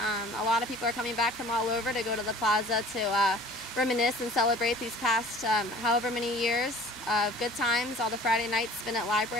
A lot of people are coming back from all over to go to the plaza to reminisce and celebrate these past however many years of good times, all the Friday nights spent at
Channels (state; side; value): normal; both; correlation 0.47